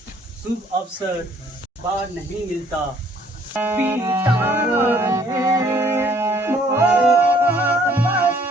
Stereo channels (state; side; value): normal; both; correlation 0.61